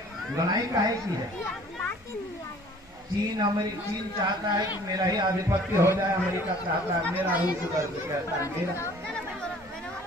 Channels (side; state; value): both; normal; correlation 0.52